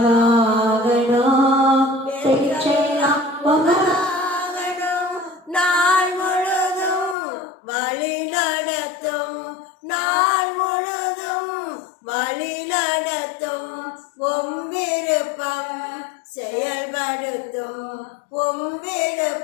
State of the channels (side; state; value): right; drops out; at 7.2 s